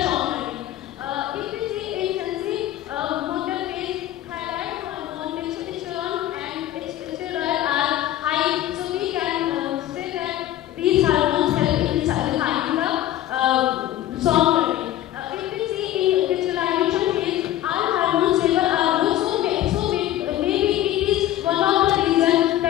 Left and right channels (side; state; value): right; quieter; 13.4 dB